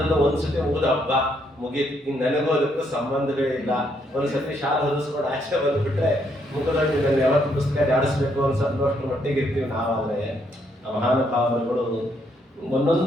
ಒಂದ್ಸತಿ ಓದ ಹಬ್ಬ ಮುಗೀತು, ಇನ್ನು ನನಗೋದಕ್ಕೂ ಸಂಬಂಧವೇ ಇಲ್ಲ. ಒಂದ್ಸತಿ ಶಾಲೆ ಹೊದಿಸ್ಕೊಂಡು ಆಚೆ ಬಂದ್ಬಿಟ್ರೆ ಮುಖದಲ್ಲಿ ನಾನು ಯಾವತ್ತು ಪುಸ್ತಕ ಜಾಡಿಸ್ಬೇಕು ಅನ್ಸೋಷ್ಟು ಮಟ್ಟಿಗೆ ಇರ್ತೀವಿ ನಾವಾದ್ರೆ. ಆ ಮಹಾನುಭಾವರುಗಳು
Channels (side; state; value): both; normal; correlation 0.73